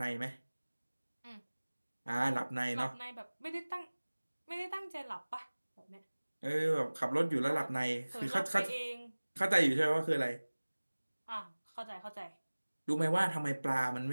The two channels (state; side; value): inverted; both; correlation -1.00